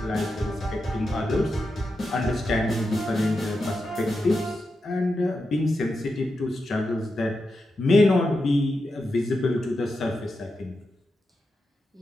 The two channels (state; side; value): normal; both; correlation 0.88